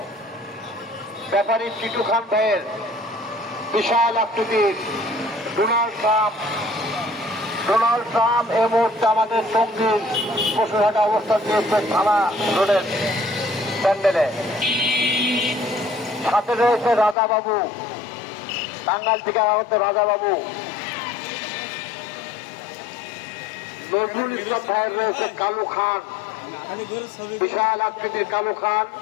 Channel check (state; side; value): drops out; right; at 17.2 s